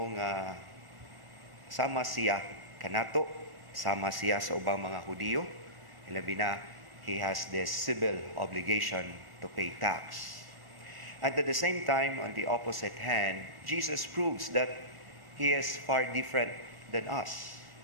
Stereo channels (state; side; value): late; left; 1.4 ms